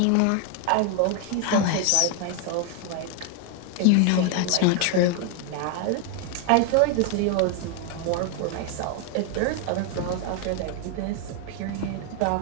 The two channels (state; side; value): different; both; correlation 0.01